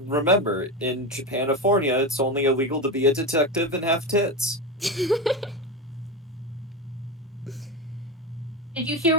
in Japanifornia, it's only illegal to be a detective and have tits. Did you hear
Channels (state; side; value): normal; both; correlation 0.18